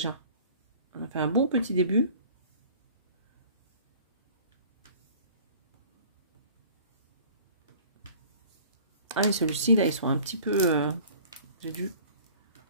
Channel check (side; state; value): both; inverted; correlation -0.48